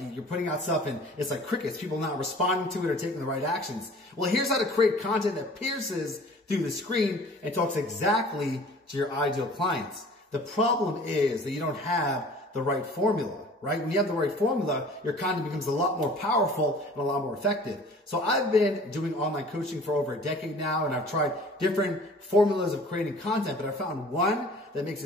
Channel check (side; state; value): both; normal; correlation 0.47